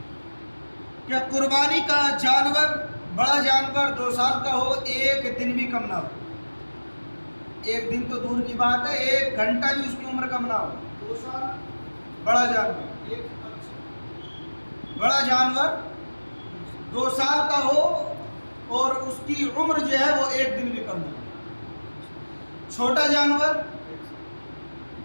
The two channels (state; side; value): inverted; both; correlation -1.00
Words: کہ قربانی کا جانور، بڑا جانور 2 سال کا ہو، 1 دن بھی کم نہ ہو۔ 1 دن تو دور کی بات ہے، 1 گھنٹہ بھی اس کی عمر کم نہ ہو۔ 2 سال بڑا جانور، بڑا جانور 2 سال کا ہو اور اس کی عمر جو ہے وہ 1 دن بھی کم نہ ہو۔ چھوٹا جانور